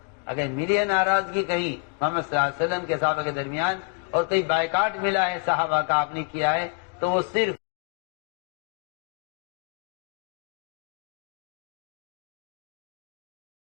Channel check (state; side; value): quieter; right; 34.0 dB